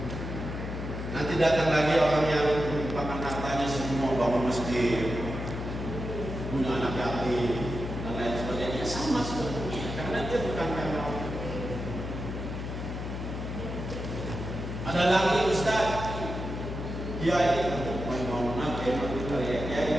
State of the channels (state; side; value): noise; left; hum, 6 dB below the sound